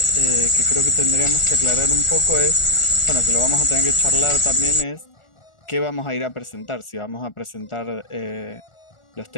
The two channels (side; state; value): right; late; 1.4 ms